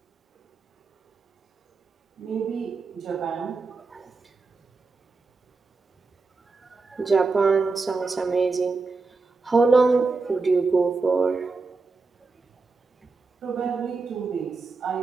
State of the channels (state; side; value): quieter; left; 4.1 dB